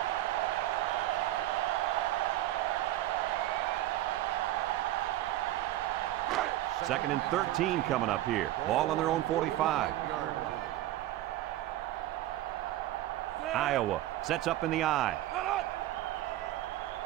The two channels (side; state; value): left; quieter; 14.8 dB